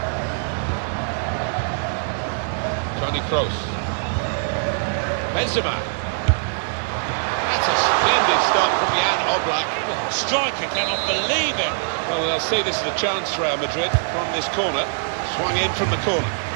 Toni Kroos. Benzema. That's a splendid stop from Jan Oblak. Oh, striker cannot believe it. Well, they'll see this is a chance for Real Madrid from this corner. Swung in from the corner.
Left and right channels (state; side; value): silent; left; digital silence